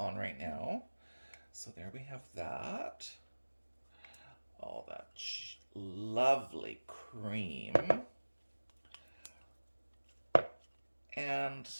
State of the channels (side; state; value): both; inverted; correlation -1.00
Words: right now. So there we have that. All that lovely cream. And